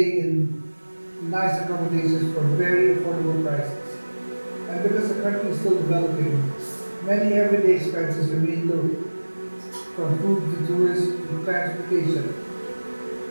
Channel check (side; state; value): both; inverted; correlation -1.00